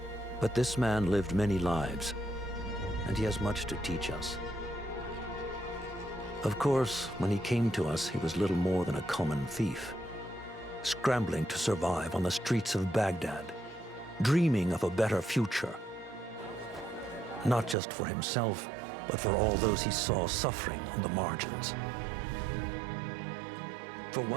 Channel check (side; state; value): left; drops out; at 17.8 s